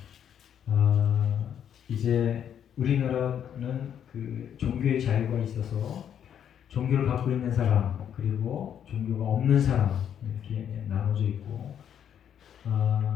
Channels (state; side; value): quieter; right; 9.1 dB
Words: 이제 우리나라는 그 종교의 자유가 있어서 종교를 갖고 있는 사람 그리고 종교가 없는 사람 이렇게 나눠져 있고